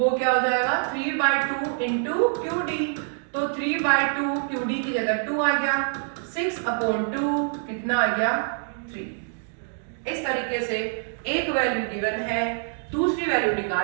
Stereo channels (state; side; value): silent; left; digital silence